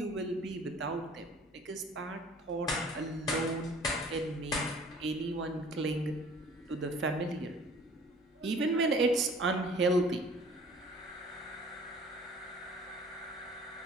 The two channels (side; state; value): both; normal; correlation 0.51